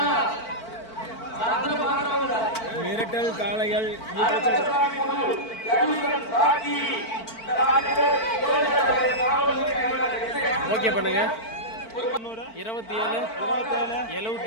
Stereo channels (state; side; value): late; right; 4.5 ms